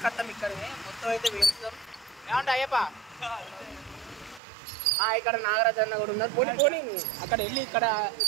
ఇక్కడనే. మొత్తం అయితే వేస్తాం. ఏమంటే అయ్యప్ప ఇక్కడ నాగరాజ్ అన్న కూడా ఉన్నారు. పోనీ పోనీ అక్కడ వెళ్ళి ఇక్కడ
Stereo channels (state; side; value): drops out; left; at 4.4 s